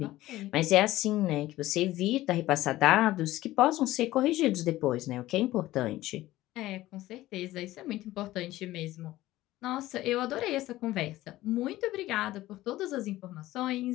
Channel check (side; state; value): right; quieter; 16.2 dB